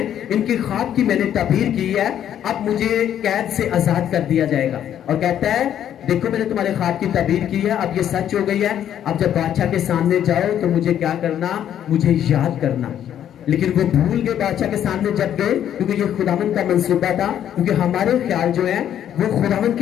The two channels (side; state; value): right; quieter; 10.2 dB